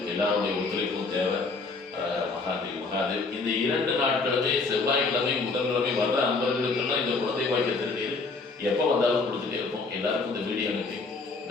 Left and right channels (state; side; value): quieter; right; 3.9 dB